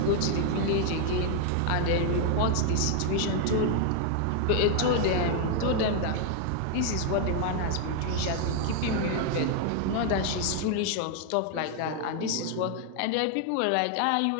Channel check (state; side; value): different; both; correlation 0.00